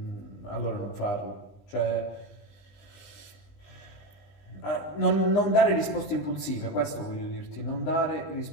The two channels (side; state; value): right; late; 20 ms